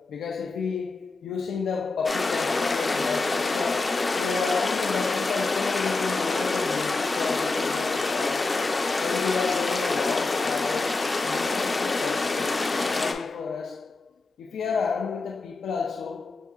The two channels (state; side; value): quieter; right; 3.6 dB